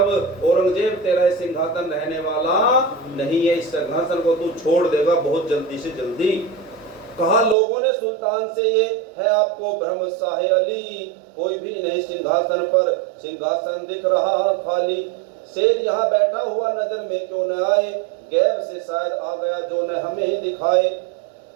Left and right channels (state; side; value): drops out; left; at 7.6 s